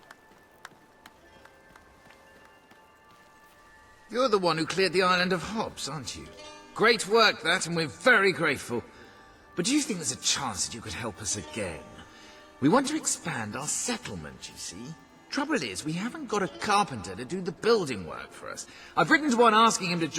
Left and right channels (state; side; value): identical; both; correlation 1.00